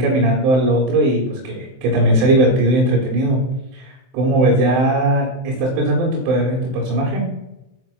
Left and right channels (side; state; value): left; late; 23 ms